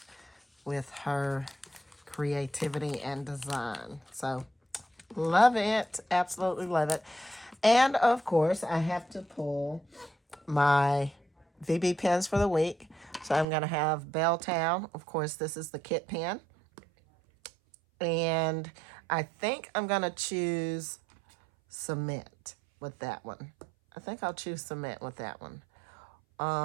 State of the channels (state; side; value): drops out; left; at 13.5 s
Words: with her creativity and design. So love it, absolutely love it. And of course, I have to pull my VB pens for the week. So I'm going to have Belltown. Of course, this is the kit pen. And I think I'm going to choose cement with that one. I think I'll choose cement with that one.